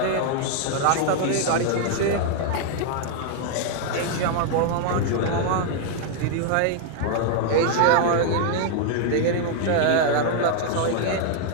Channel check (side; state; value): both; different; correlation 0.00